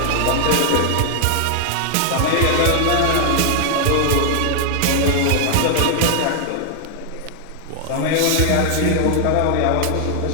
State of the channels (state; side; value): different; both; correlation 0.00